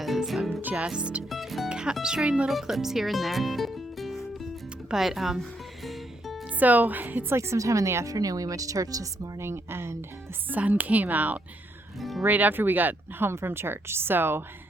I'm just capturing little clips here and there. But so it's like sometime in the afternoon. We went to church this morning and the sun came out right after we got home from church. So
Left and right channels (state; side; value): normal; both; correlation 0.76